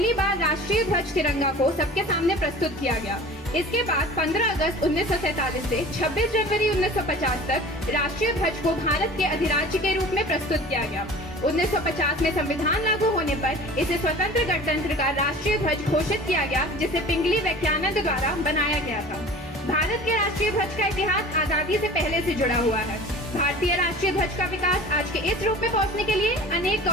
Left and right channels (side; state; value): both; normal; correlation 0.41